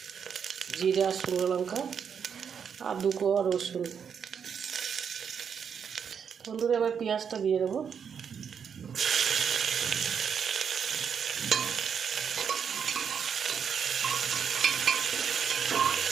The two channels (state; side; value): quieter; left; 7.2 dB